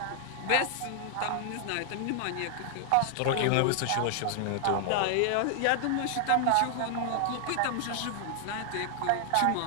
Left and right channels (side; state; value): both; different; correlation 0.00